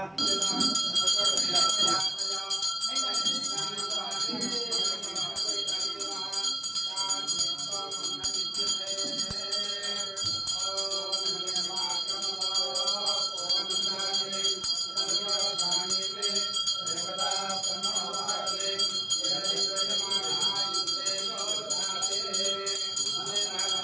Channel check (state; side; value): normal; both; correlation 0.96